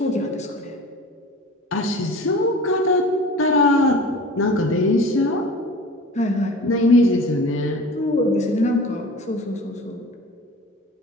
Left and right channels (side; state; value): both; normal; correlation 0.39